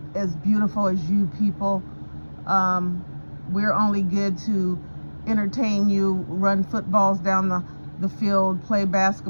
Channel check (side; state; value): both; inverted; correlation -1.00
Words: as beautiful as you people. We're only good to entertain you, run footballs down the field, play